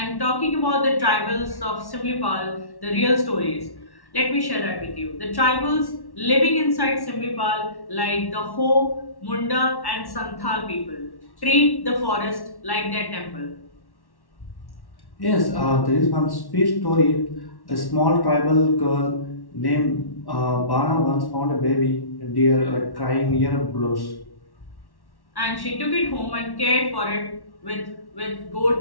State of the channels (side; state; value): right; late; 1.1 ms